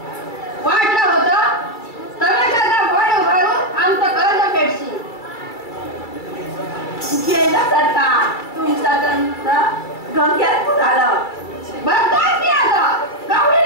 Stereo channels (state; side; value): late; right; 2.3 ms